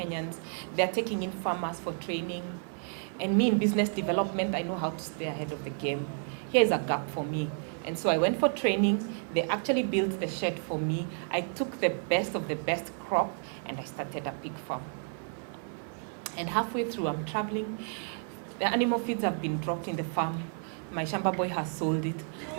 They're taking in farmers for training. And me in business development, I know how to stay ahead of the game. Here's a gap for me. And so I went for training. They actually built the shed for me. I took the best of the best crop and I started a pig farm. And halfway through, I'm traveling. The animal feeds have been dropped in the farm. My Shamba boy has sold it.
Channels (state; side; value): silent; left; 57 dB below the other